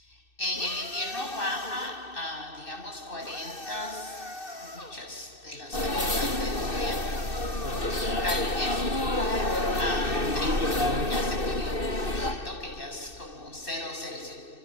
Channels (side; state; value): right; late; 2.6 ms